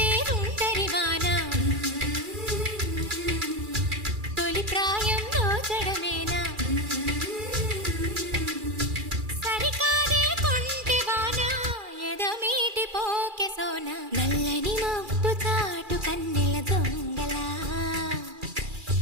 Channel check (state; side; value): late; left; 2.4 ms